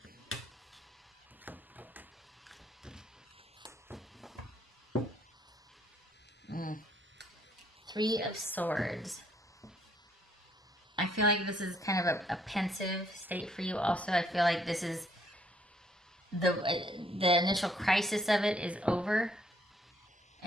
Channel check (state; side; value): normal; both; correlation 0.68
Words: Three of Swords. I feel like this is kind of a pensive state for you also. I feel like this is the initial crisis of it is over,